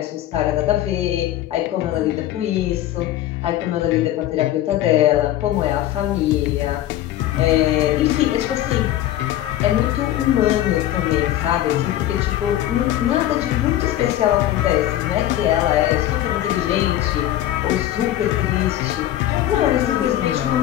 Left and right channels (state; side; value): quieter; right; 13.3 dB